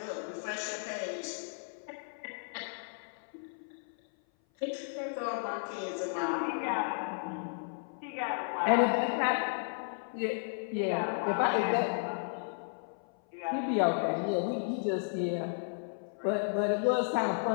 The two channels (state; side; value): silent; right; 55 dB below the other